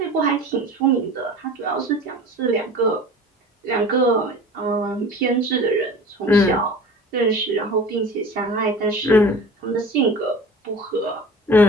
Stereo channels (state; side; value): normal; both; correlation 0.39